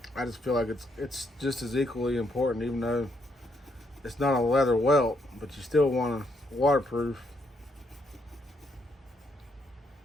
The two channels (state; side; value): normal; both; correlation 0.75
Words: feel like it's just as equally important, even though it's not a leather welt, but you still want to waterproof